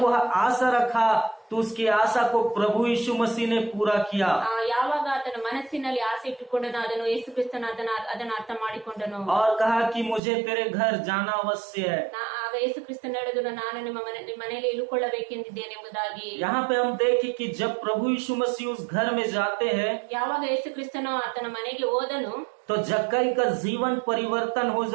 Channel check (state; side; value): drops out; left; at 10.2 s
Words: वह आशा रखा तो उसकी आशा को प्रभु यीशु मसीह ने पूरा किया। ಯಾವಾಗ ಆತನ ಮನಸ್ಸಿನಲ್ಲಿ ಆಸೆ ಇಟ್ಟುಕೊಂಡನು ಅದನ್ನು ಯೇಸು ಕ್ರಿಸ್ತನು ಅದನ್ನು ಅರ್ಥ ಮಾಡಿಕೊಂಡನು। और कहा कि मुझे तेरे घर जाना अवश्य है। ಆಗ ಯೇಸು ಕ್ರಿಸ್ತನು ಹೇಳಿದನು ನಾನು ನಿಮ್ಮ ಮನೆಯಲ್ಲಿ ಇಳುಕೊಳ್ಳಬೇಕೆಂದಿದ್ದೇನೆ ಎಂಬುದಾಗಿ। यहाँ पे हम देखें कि जब प्रभु यीशु मसीह उस घर में जाते हैं ಯಾವಾಗ ಯೇಸು ಕ್ರಿಸ್ತನು ಆತನ ಮನೆಗೆ ಹೋದನು तो जक्कई का जीवन परिवर्तन हो